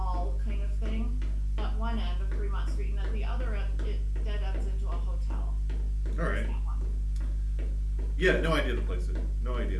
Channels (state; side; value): identical; both; correlation 1.00